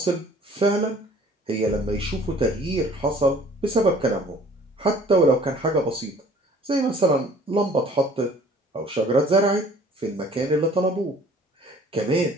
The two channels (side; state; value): both; normal; correlation 0.52